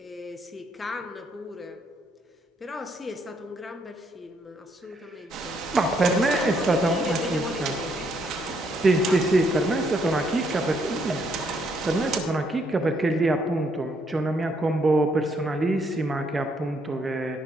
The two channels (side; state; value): both; normal; correlation 0.72